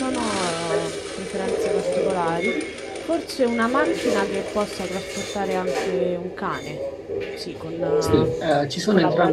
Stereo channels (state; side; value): identical; both; correlation 1.00